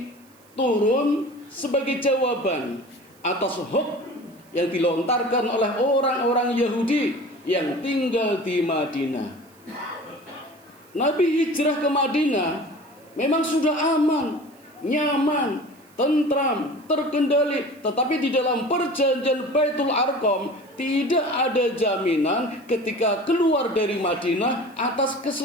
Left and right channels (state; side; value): noise; right; hiss, 30 dB below the sound